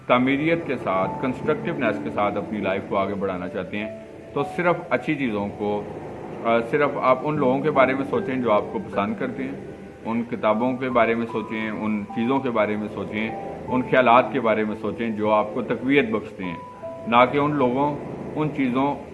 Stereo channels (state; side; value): identical; both; correlation 1.00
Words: तामीरियत के साथ, कंस्ट्रक्टिवनेस के साथ अपनी लाइफ को आगे बढ़ाना चाहते हैं, तो सिर्फ अच्छी चीज़ों को, सिर्फ आप उन लोगों के बारे में सोचें जो आपको पसंद करते हैं, उन किताबों के बारे में सोचें, उन चीज़ों के बारे में सोचें, उन ख्यालात के बारे में सोचें जो आपको तक़वियत बख्शते हैं, ना कि उन लोगों, उन चीज़ों,